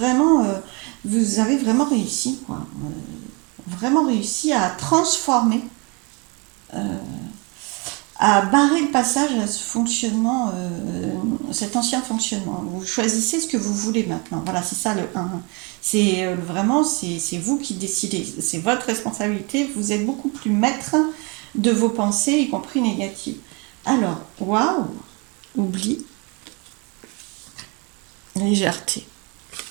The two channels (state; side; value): quieter; left; 30.6 dB